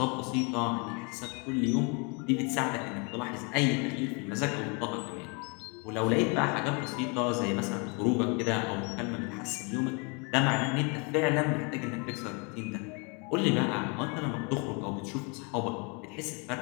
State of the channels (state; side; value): quieter; right; 32.8 dB